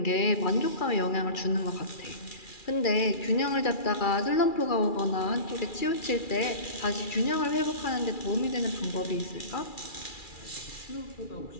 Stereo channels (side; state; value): right; late; 2.4 ms